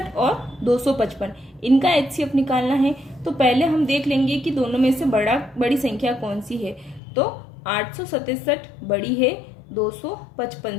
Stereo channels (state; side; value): drops out; right; at 7.0 s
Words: और 255, इनका एचसीएफ निकालना है। तो पहले हम देख लेंगे कि दोनों में से बड़ी संख्या कौन सी है। तो 867 बड़ी है 255